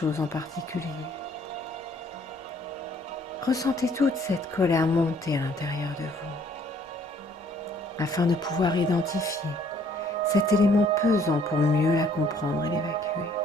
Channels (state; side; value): normal; both; correlation 0.62